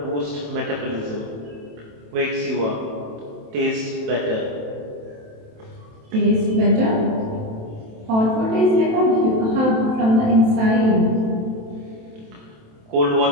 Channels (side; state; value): left; late; 27 ms